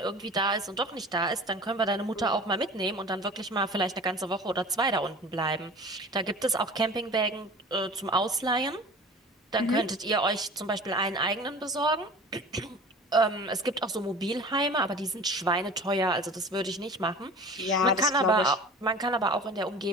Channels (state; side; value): normal; both; correlation 0.40